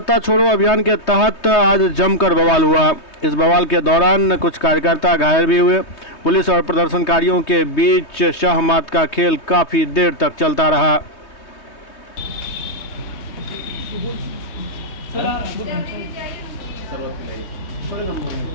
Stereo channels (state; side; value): late; right; 3.2 ms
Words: छोड़ो अभियान के तहत आज जमकर बवाल हुआ। इस बवाल के दौरान कुछ कार्यकर्ता घायल भी हुए। पुलिस और प्रदर्शनकारियों के बीच शाह मात का खेल काफी देर तक चलता रहा।